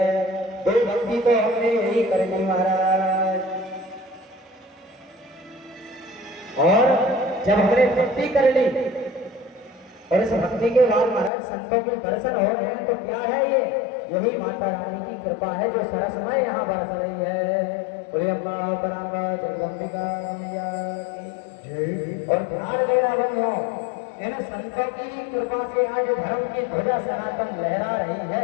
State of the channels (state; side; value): drops out; right; at 11.3 s